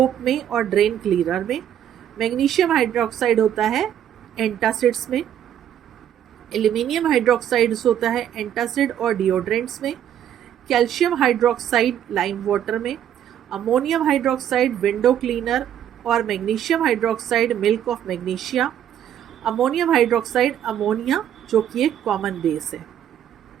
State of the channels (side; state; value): left; quieter; 10.2 dB